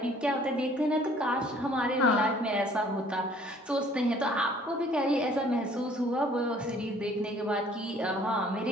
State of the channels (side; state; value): both; normal; correlation 0.56